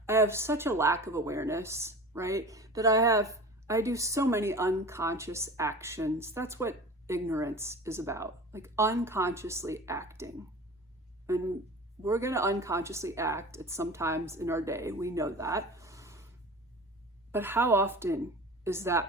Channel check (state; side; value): normal; both; correlation 0.36